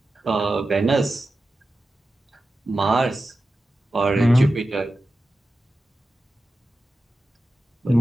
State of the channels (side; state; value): both; normal; correlation 0.93